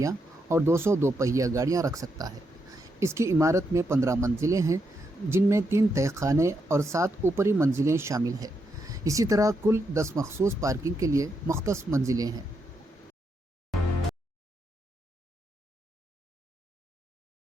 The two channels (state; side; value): normal; both; correlation 0.81